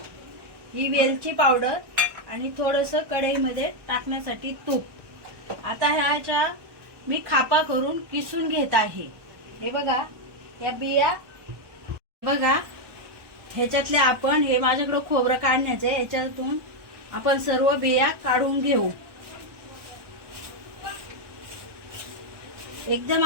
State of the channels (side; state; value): left; late; 1.1 ms